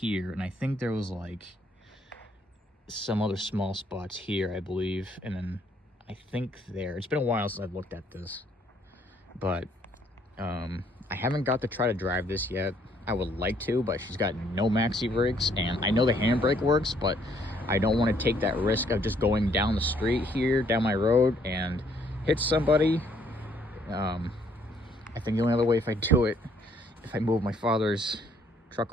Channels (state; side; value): normal; both; correlation 0.66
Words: and I think there was like some other small spots here, I believe, and then I think there. It's been a while since I've looked at this, but I haven't got to try to drive this yet. I would like to, but she's got no maxi brakes, and I know the handbrake works, but I don't want to take that risk of just going down the street here, down my road, and hit somebody. I think the only other way if I do it, if I move my father's truck